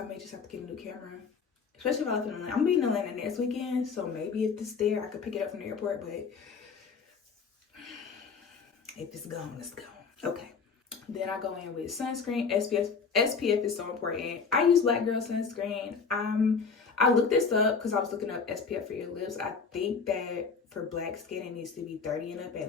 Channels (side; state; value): right; quieter; 5.4 dB